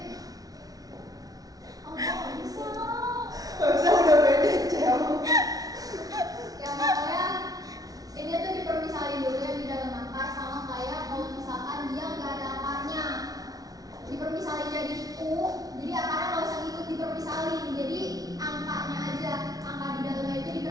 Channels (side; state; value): left; late; 0.18 ms